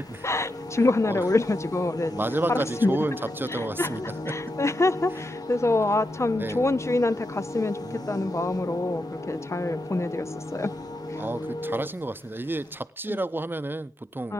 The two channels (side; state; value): both; normal; correlation 0.85